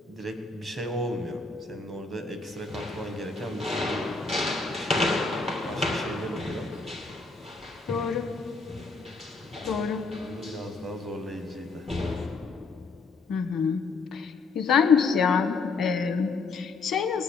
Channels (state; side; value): quieter; right; 4.1 dB